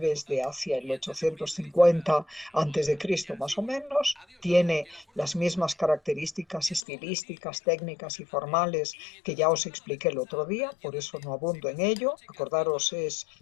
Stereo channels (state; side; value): drops out; right; at 6.9 s